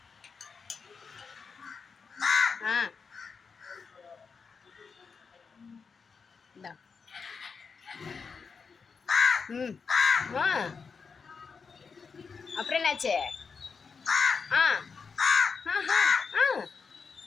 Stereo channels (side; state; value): right; quieter; 5.4 dB